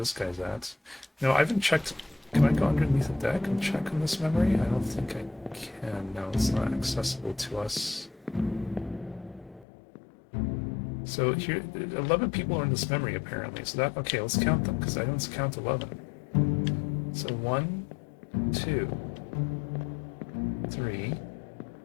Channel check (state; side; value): drops out; right; at 9.7 s